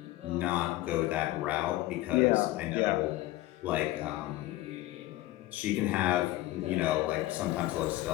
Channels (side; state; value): right; quieter; 16.9 dB